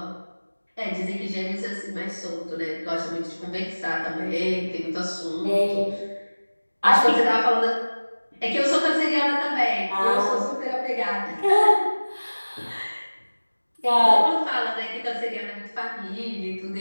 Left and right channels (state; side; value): inverted; both; correlation -1.00